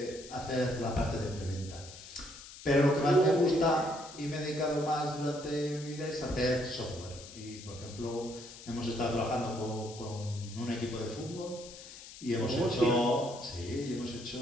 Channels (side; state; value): left; noise; hiss, 15 dB below the sound